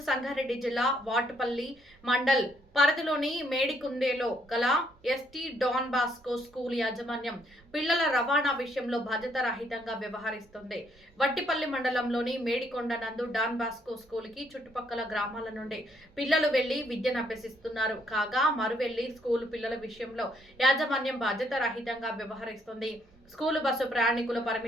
సంగారెడ్డి జిల్లా వాటుపల్లి మండల్ పరిధిలోని మేడికుందేలో గల ఎస్టీ డాన్ బాస్కో స్కూల్ యాజమాన్యం పిల్లల రవాణా విషయంలో బాధ్యతారహితంగా వ్యవహరిస్తుంది. వట్టిపల్లి మండలంలోని మేడికొండ నందు డాన్ బాస్కో స్కూల్ కి చుట్టుపక్కల గ్రామాల నుండి పిల్లలు వెళ్లి విద్యను అభ్యసిస్తున్నారు. కాగా మరువెళ్లి స్కూల్ పిల్లల విషయంలో యాజమాన్యం బాధ్యతారహితంగా వ్యవహరిస్తుంది. స్కూలు బస్సు ప్రయాణికుల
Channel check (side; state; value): both; normal; correlation 0.71